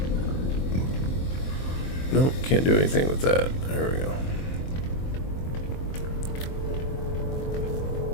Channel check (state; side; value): late; right; 23 ms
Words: Nope, can't do anything with that. There we go.